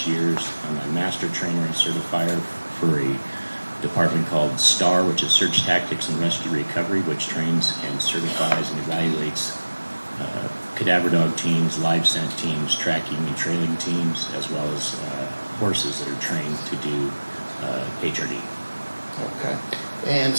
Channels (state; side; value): inverted; both; correlation -1.00